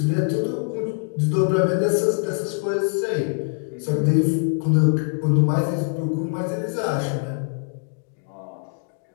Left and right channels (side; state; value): right; silent; digital silence